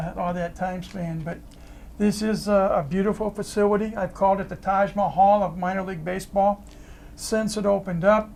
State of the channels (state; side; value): identical; both; correlation 1.00